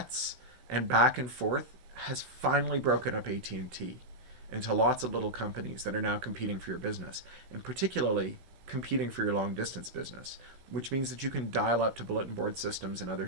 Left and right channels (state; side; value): late; left; 16 ms